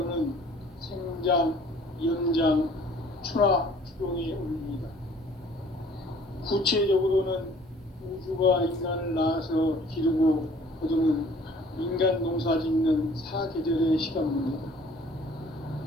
생장, 연장, 추나, 추동의 원리이다. 구체적으로는 우주가 인간을 낳아서 기르고 딱 계절의 시간입니다.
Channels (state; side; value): normal; both; correlation 0.54